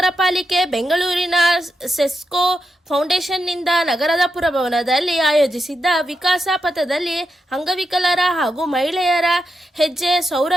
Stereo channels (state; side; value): normal; both; correlation 0.86